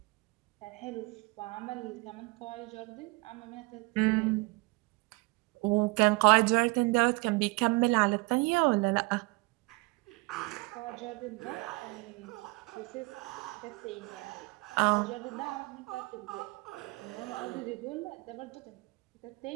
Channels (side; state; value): left; quieter; 26.1 dB